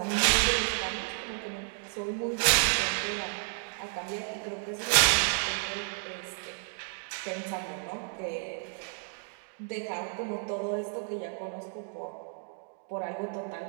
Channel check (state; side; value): silent; left; 57 dB below the other